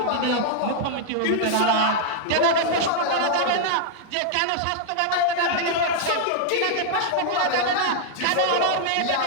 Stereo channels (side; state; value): both; different; correlation -0.01